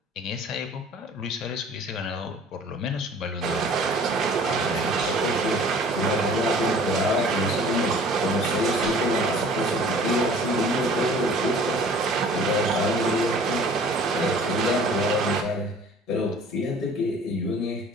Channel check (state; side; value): normal; both; correlation 0.49